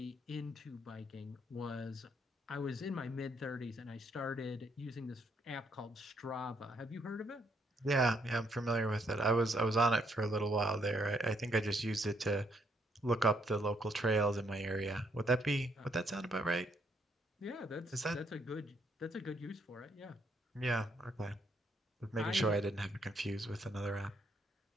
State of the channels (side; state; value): both; normal; correlation 0.72